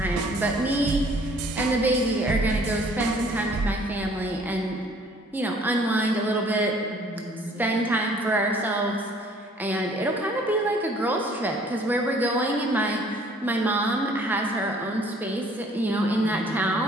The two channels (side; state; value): both; normal; correlation 0.57